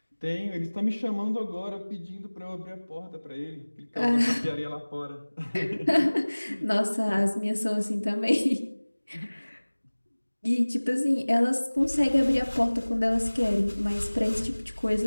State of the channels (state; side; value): inverted; both; correlation -1.00